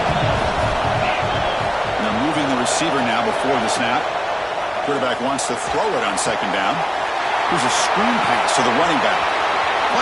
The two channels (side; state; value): both; identical; correlation 1.00